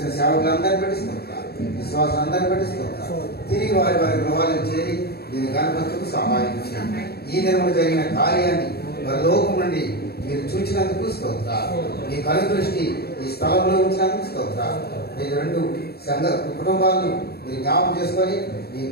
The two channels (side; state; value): right; late; 0.46 ms